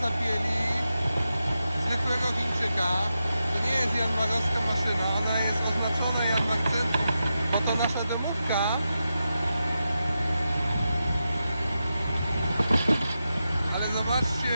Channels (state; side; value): inverted; both; correlation -0.89